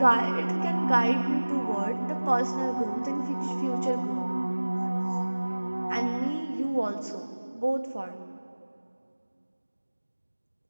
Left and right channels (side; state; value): both; inverted; correlation -1.00